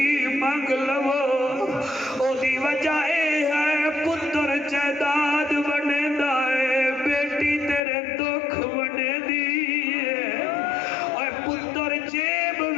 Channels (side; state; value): right; drops out; at 7.8 s